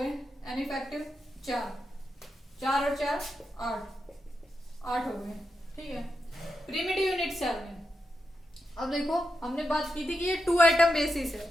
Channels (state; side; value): normal; both; correlation 0.87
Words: एन इफेक्टिव 4, 4 और 4 8, 8 हो गए। ठीक है। प्रिमिटिव यूनिट सेल में अब देखो हमने बात की थी कि ये 2 एटम बेसिस